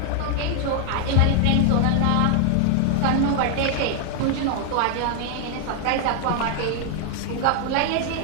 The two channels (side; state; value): both; different; correlation 0.00